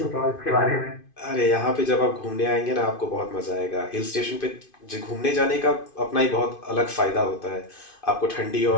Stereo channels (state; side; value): late; right; 2.5 ms